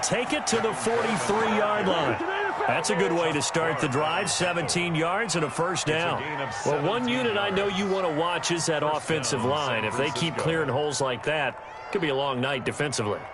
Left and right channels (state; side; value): identical; both; correlation 1.00